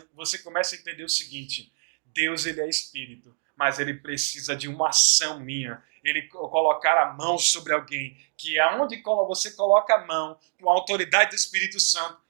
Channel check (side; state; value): left; silent; digital silence